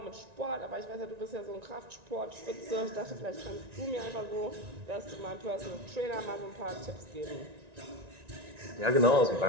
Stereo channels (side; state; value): left; late; 1.9 ms